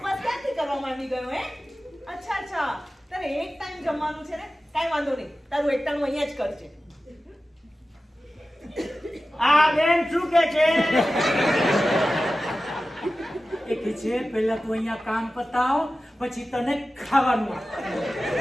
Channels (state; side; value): normal; both; correlation 0.95